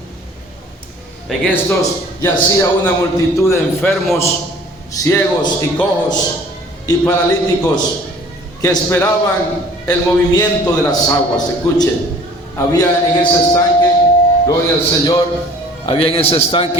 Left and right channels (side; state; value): both; normal; correlation 0.50